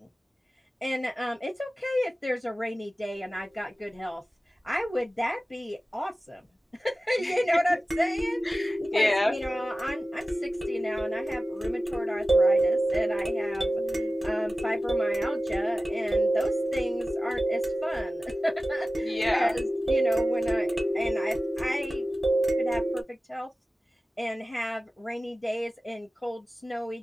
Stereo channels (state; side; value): normal; both; correlation 0.96